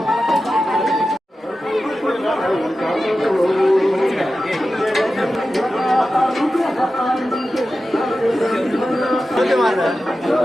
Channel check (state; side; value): normal; both; correlation 0.93